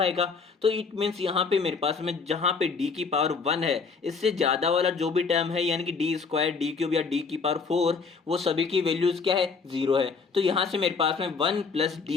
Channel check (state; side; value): quieter; right; 5.1 dB